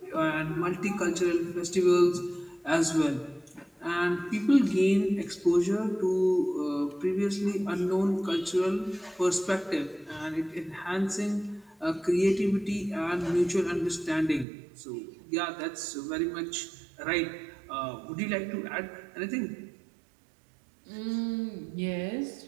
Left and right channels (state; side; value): drops out; left; at 14.5 s